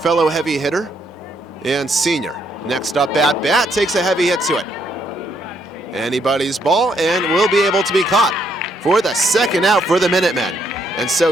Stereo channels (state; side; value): normal; both; correlation 0.73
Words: heavy hitter and senior. Next up at bat, takes a heavy hit to it. Anybody's ball, and will be able to be caught for the second out for the Minutemen. And so